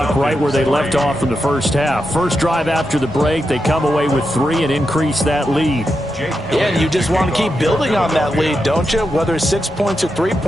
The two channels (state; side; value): normal; both; correlation 0.87